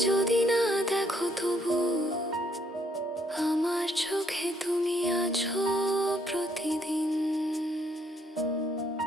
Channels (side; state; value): both; normal; correlation 0.69